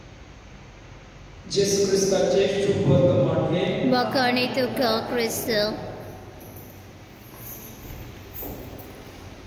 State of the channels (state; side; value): identical; both; correlation 1.00